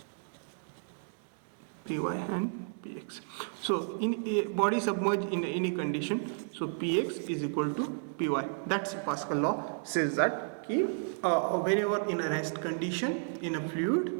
px. So in a body submerged in any condition, so px is equal to py. That's Pascal law, says that whenever in a rest condition in a fluid,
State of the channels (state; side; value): silent; left; digital silence